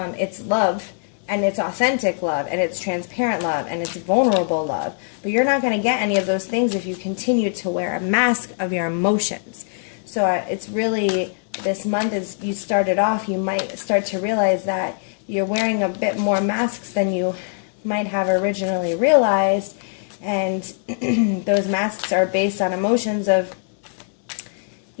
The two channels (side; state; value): right; silent; 64 dB below the other